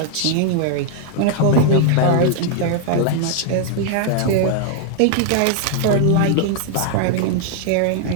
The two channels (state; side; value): different; both; correlation 0.00